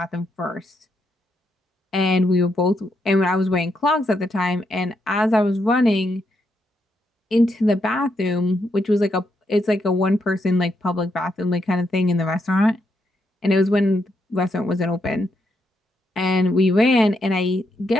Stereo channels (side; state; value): both; normal; correlation 0.79